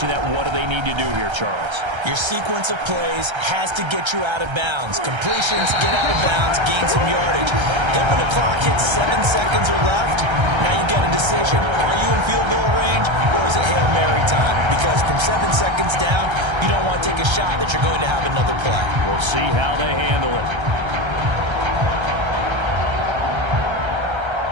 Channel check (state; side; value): late; left; 1.3 ms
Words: that. What do they need to do here, Charles? Your sequence of plays has to get you out of bounds. Completions, get out of bounds, gain some yardage. Then when the clock hits 7 seconds or left, now you get a decision. Are you in field goal range or is it Hail Mary time? Because from 7 seconds down, you don't want to take a shot that you're going to have another play. We'll see how they handle it.